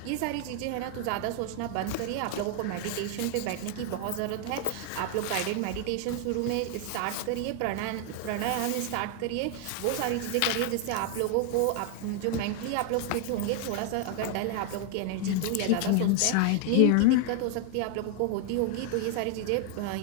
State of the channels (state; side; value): different; both; correlation 0.00